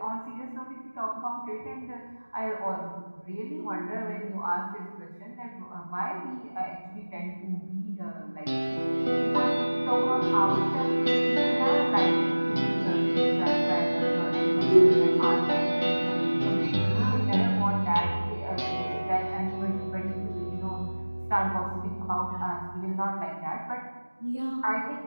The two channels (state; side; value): inverted; both; correlation -1.00